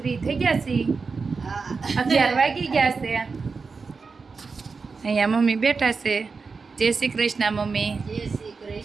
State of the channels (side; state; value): left; quieter; 4.7 dB